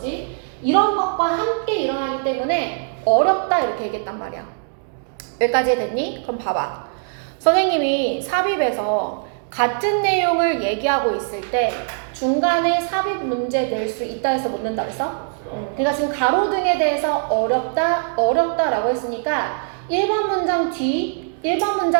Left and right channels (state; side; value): silent; left; digital silence